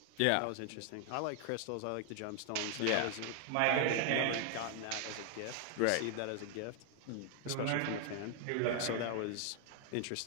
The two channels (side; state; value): both; different; correlation 0.00